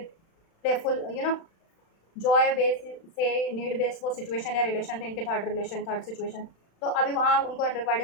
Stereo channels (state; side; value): late; right; 36 ms